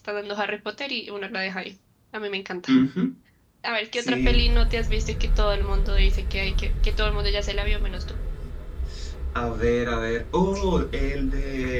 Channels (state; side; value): identical; both; correlation 1.00